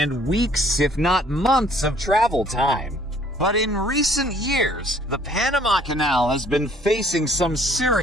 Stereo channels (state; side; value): normal; both; correlation 0.59